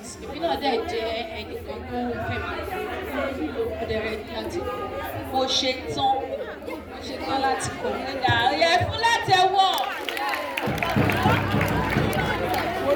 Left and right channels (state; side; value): identical; both; correlation 1.00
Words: Èmi náà dẹ̀ jẹ́ ẹnìkan tó fẹ́mi. Mo dẹ̀ rẹ̀ láti kọ́. Mo ṣe tán. Mo ṣetán láti kọ́. Ọ̀yà ẹ̀fún láti ẹ̀wọ́.